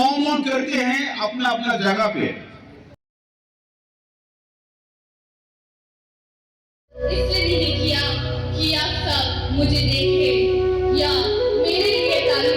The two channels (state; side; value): identical; both; correlation 1.00